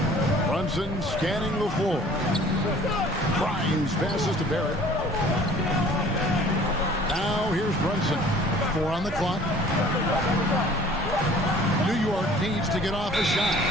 Brunson scanning the floor. Grimes passes to Barrett. Now here's Brunson. 4 on the clock. New York needs to get off a shot.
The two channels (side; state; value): both; normal; correlation 0.51